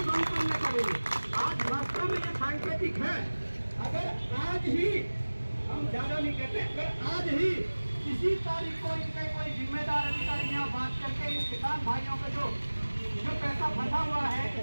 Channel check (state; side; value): inverted; both; correlation -1.00